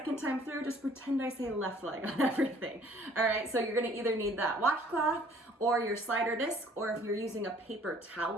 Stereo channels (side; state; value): both; normal; correlation 0.56